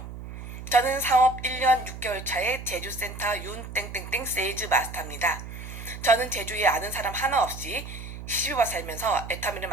저는 사업 1년 6개월 차의 제주센터 윤땡땡땡 세일즈 마스터입니다. 저는 제주에 아는 사람 하나 없이 시집와 살면서 애터미를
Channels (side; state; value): right; noise; hum, 10 dB below the sound